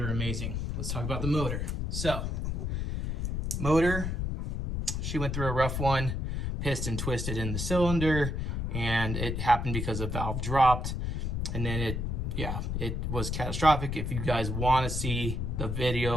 amazing. Let's talk about the motor. So, motor, she went through a rough one, piston twisted in the cylinder, and it happened because a valve dropped, and then it was catastrophic. If you guys want to see the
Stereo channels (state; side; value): noise; left; rumble, 1 dB below the sound